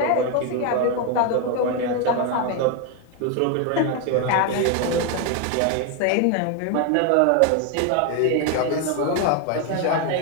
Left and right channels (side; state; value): both; different; correlation 0.01